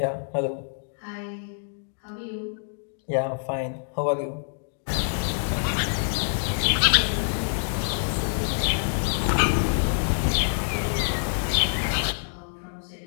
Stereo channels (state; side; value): silent; right; digital silence